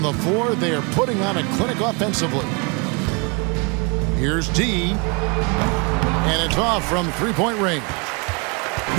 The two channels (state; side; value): quieter; left; 31.8 dB